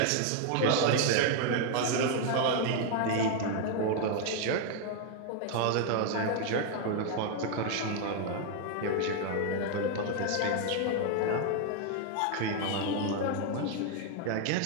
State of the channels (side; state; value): both; different; correlation 0.00